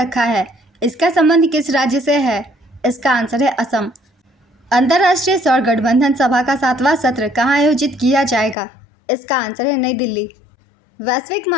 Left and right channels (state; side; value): drops out; right; at 8.6 s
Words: है। इसका संबंध किस राज्य से है? इसका आंसर है असम। अंतर्राष्ट्रीय सौर गठबंधन सभा का 7वां सत्र कहाँ आयोजित किया जाएगा? इसका आंसर है नई दिल्ली। वैश्विक